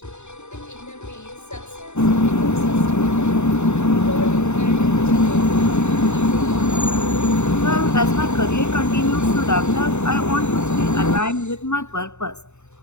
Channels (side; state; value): right; late; 0.82 ms